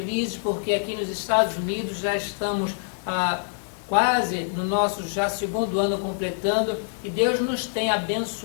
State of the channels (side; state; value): right; silent; digital silence